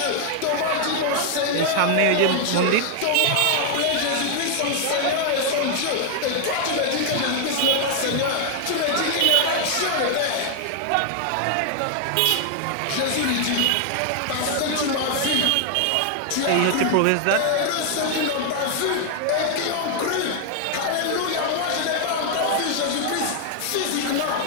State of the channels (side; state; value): both; different; correlation 0.00